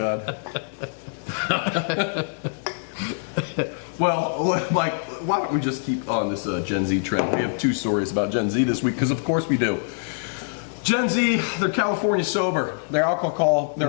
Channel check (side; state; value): right; silent; 62 dB below the other